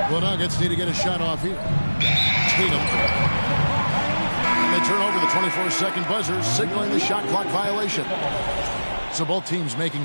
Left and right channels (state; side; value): inverted; both; correlation -1.00